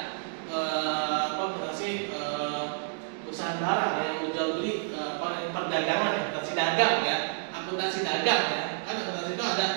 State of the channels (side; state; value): left; silent; digital silence